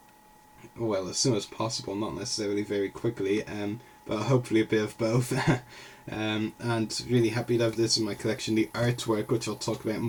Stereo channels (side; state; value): both; identical; correlation 1.00